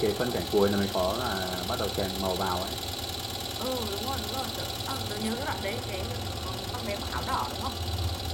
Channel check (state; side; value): identical; both; correlation 1.00